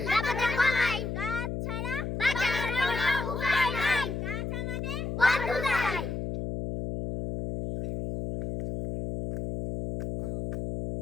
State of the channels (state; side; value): noise; left; hum, 4 dB below the sound